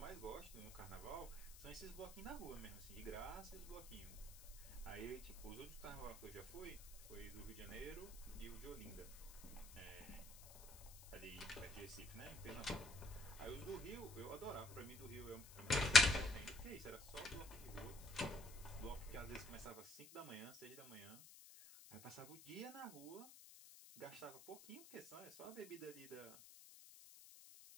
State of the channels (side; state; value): left; noise; hiss, 16 dB below the sound